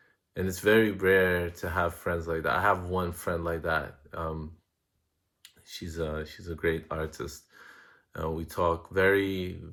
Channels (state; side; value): identical; both; correlation 1.00